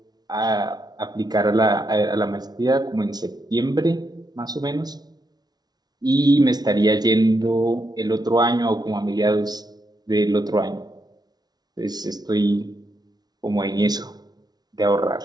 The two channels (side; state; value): left; late; 0.19 ms